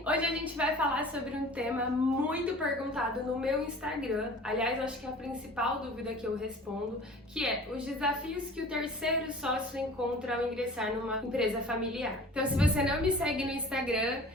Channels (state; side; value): normal; both; correlation 0.44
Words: Hoje a gente vai falar sobre um tema muito perguntado no meu Instagram. Aliás, acho que é a principal dúvida que eu respondo, que é os desafios que o terceiro sócio encontra ao ingressar numa empresa familiar. Então, se você não me segue no Instagram,